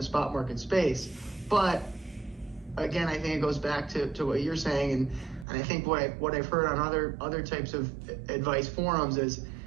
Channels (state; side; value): drops out; left; at 5.5 s